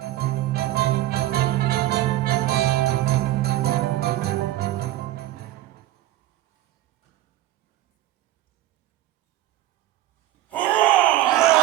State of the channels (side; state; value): left; quieter; 15.2 dB